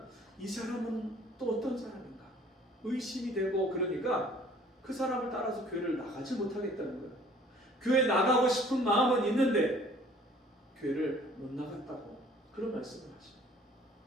이 사람은 또 어떤 사람인가 의심이 되고, 그러니까 그 사람을 따라서 교회를 나가지 못하겠다는 거예요. 교회 나가고 싶은 마음은 있는데 교회를 못 나갔다고 그런 말씀을 하십니다.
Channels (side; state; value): both; normal; correlation 0.54